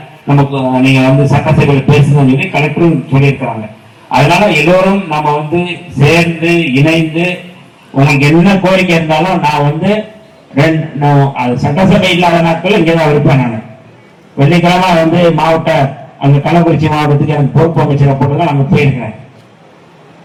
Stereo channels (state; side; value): identical; both; correlation 1.00